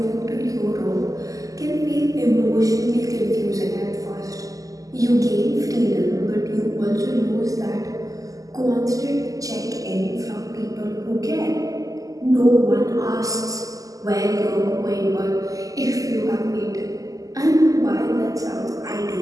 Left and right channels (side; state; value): left; late; 0.17 ms